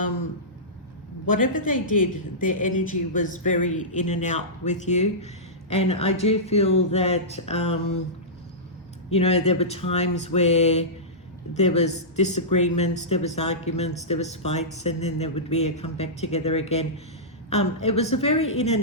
whatever they did, their energy was very in and out with you. And I do feel that, you know, there were times where there was disagreements, there was arguments, there was fights, and then there would be a come back together again. It was a very in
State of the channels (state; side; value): normal; both; correlation -0.16